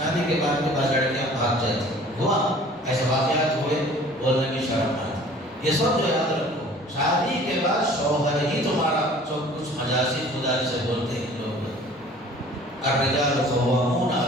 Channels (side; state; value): both; normal; correlation 0.49